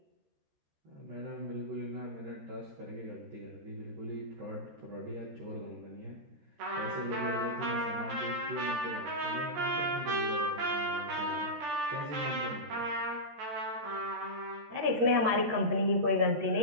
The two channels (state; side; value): late; left; 13 ms